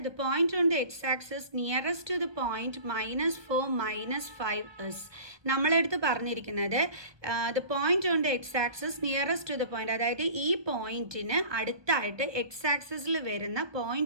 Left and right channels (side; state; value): left; late; 1.5 ms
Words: The point on the x axis nearest to the point -4 -5 is. നമ്മളെടുത്ത് പറഞ്ഞിരിക്കുന്നത് the point on the x axis nearest to the point, അതായത് ഈ പോയിന്റിന് അടുത്തായിട്ട് എക്സ് ആക്സിസിൽ വരുന്ന